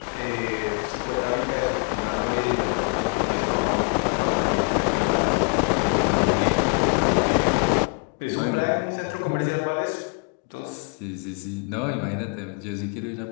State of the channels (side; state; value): right; quieter; 39.1 dB